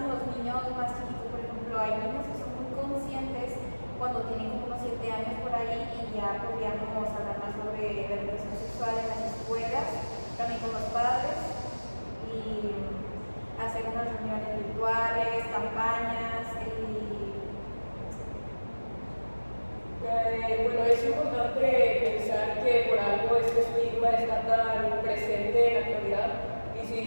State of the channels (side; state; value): both; inverted; correlation -1.00